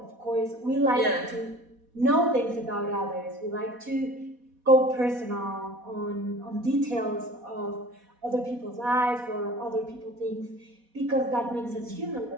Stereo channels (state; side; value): late; left; 4.1 ms